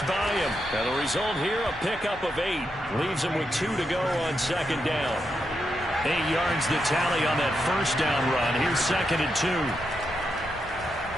by him. And the result here, a pickup of 8. Leaves him with 2 to go on second down. 8 yards the tally on that first down run. Here's 2nd and 2.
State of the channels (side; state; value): both; normal; correlation 0.84